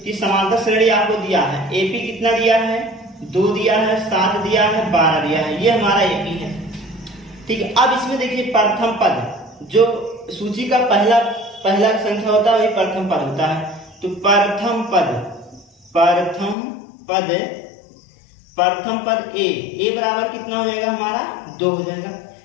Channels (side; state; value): right; drops out; at 16.6 s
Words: कि समांतर श्रेणी आपको दिया है, एपी कितना दिया है, 2 दिया है, 7 दिया है, 12 दिया है, ये हमारा एपी है। ठीक है, अब इसमें देखिए प्रथम पद, जो सूची का पहला संख्या होता है वही प्रथम पद होता है। तो प्रथम पद ए बराबर कितना हो जाएगा हमारा 2 हो जाएगा,